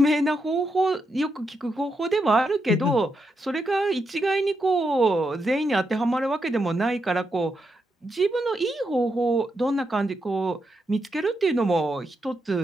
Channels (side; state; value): both; normal; correlation 0.83